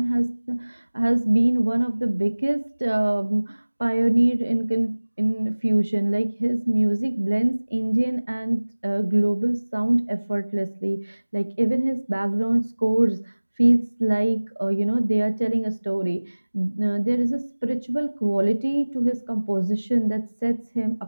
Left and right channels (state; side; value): inverted; both; correlation -1.00